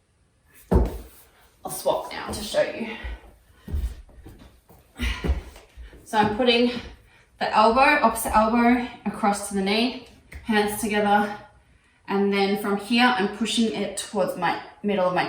I'll swap now to show you. So I'm putting the opposite elbow across to the knee, hands together, and then from here I'm pushing it towards my middle of my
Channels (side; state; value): both; identical; correlation 1.00